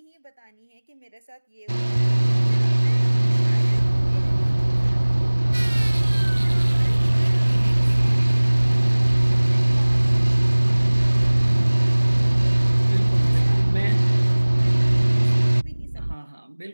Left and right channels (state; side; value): inverted; both; correlation -1.00